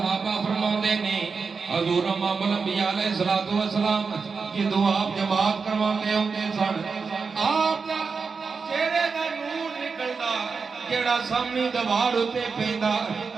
فرماندے نے حضور امام الانبیاء علیہ الصلوۃ والسلام جدوں آپ جماعت کرواندے ہوندے سن آپ دا چہرے دا نور نکلدا جیڑا سامنے دیوار اتے پیندا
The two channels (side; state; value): left; quieter; 5.0 dB